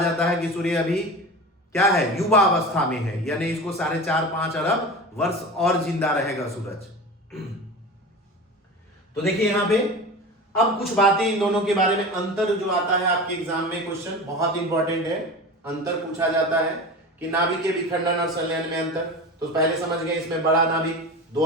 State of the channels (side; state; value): both; normal; correlation 0.31